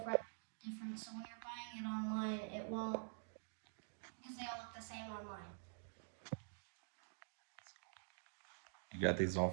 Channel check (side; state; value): left; silent; digital silence